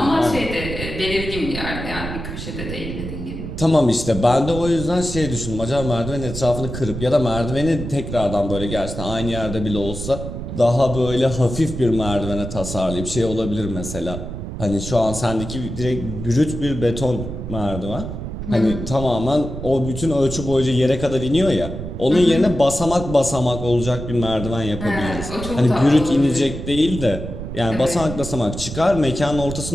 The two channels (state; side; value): noise; right; rumble, 7 dB below the sound